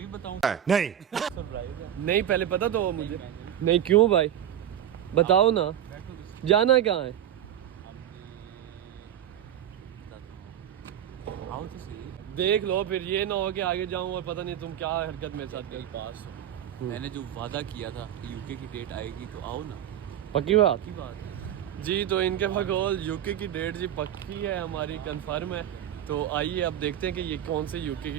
नहीं पहले पता तो हो मुझे। नहीं क्यों भाई बताओ ना, जाना कहाँ है? देख लो फिर ये ना हो कि आगे जाऊं और पता नहीं तुम क्या हरकत मेरे साथ कर। पास मैंने जो वादा किया था कि यूके की डेट आएगी तो आओ ना। पक्की बात की बात है जी। तो इनके बकौल यूके की डेट जी पक्की है, हमारी कंफर्म है। तो आइए अब देखते हैं कि ये कौन से यूके की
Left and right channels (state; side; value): quieter; left; 10.7 dB